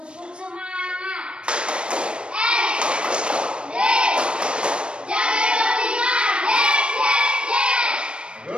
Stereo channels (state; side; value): late; left; 0.056 ms